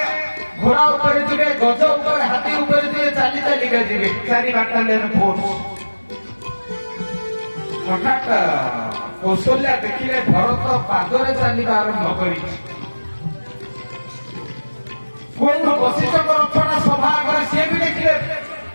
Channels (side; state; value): both; inverted; correlation -1.00